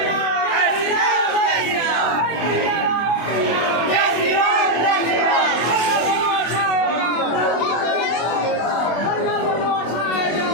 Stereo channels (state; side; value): late; right; 24 ms